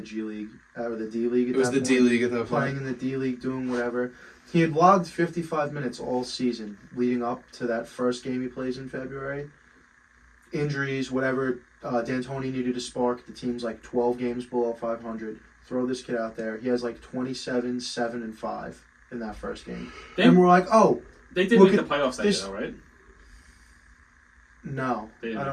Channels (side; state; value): both; identical; correlation 1.00